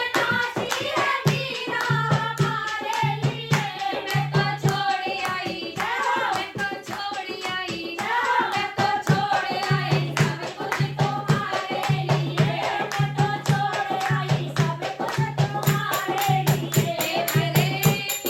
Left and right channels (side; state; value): both; identical; correlation 1.00